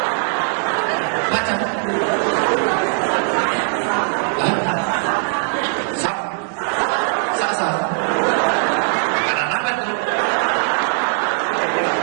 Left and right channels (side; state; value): left; silent; digital silence